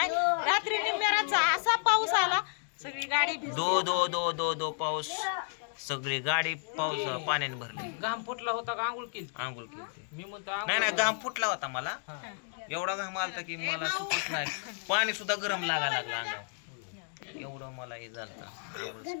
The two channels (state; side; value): silent; right; 56 dB below the other